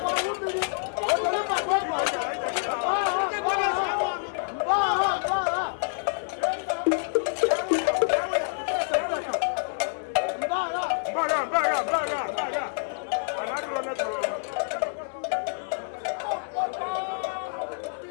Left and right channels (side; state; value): right; silent; digital silence